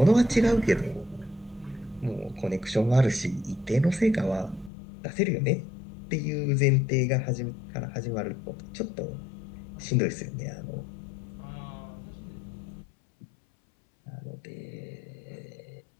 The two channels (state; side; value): drops out; right; at 4.7 s